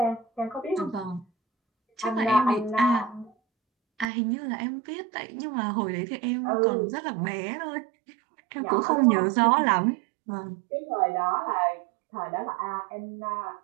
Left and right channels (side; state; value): left; drops out; at 4.0 s